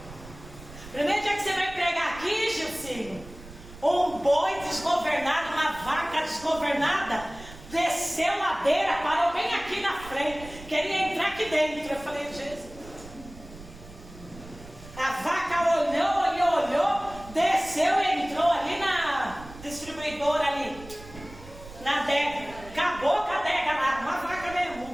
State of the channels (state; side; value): noise; right; rumble, 17 dB below the sound